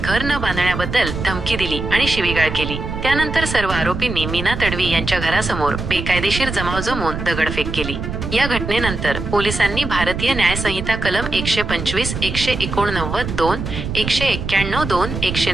घर न बांधण्याबद्दल धमकी दिली आणि शिवीगाळ केली। त्यानंतर सर्व आरोपींनी मीना तडवी यांच्या घरासमोर बेकायदेशीर जमाव जमवून दगडफेक केली। या घटनेनंतर पोलिसांनी भारतीय न्याय संहिता कलम 125, 189, 2, 191, 2,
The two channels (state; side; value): noise; right; rumble, 5 dB below the sound